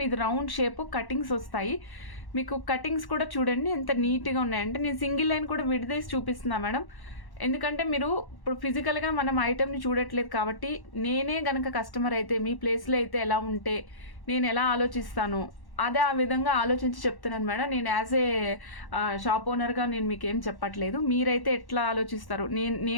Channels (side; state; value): right; late; 1.1 ms